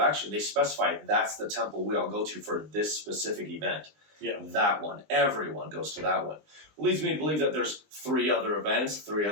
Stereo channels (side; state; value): left; late; 20 ms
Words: they specify that's the temple we all go to for this specific event. Yeah. That one. Everyone goes to that one. Leads me to believe that there's three other events, three